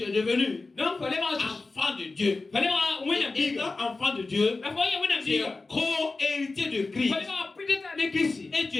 es devenu enfant de Dieu. Et étant enfant de Dieu, tu es co-héritier de Christ. Et tu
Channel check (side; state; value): right; quieter; 3.6 dB